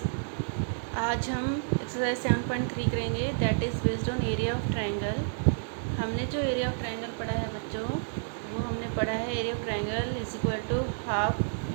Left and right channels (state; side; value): silent; left; digital silence